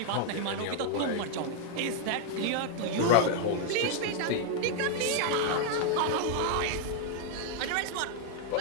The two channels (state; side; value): different; both; correlation 0.00